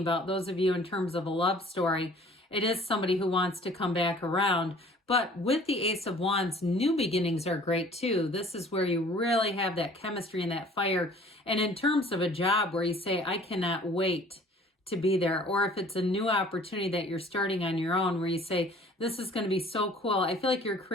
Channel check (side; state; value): both; normal; correlation 0.51